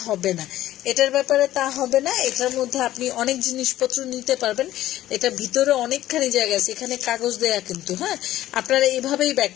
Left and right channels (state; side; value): quieter; right; 14.1 dB